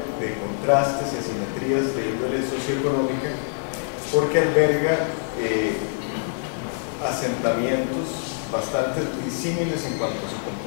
contrastes y asimetrías de índole socioeconómica, porque alberga asentamientos bastante disímiles en cuanto a su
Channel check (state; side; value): silent; right; 62 dB below the other